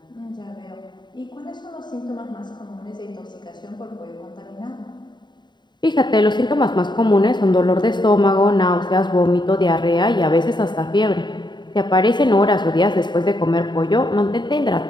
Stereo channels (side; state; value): right; late; 0.22 ms